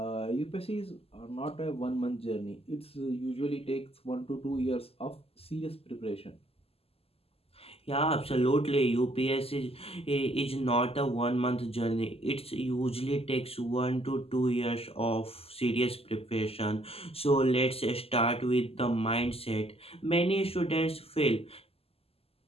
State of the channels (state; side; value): late; right; 0.29 ms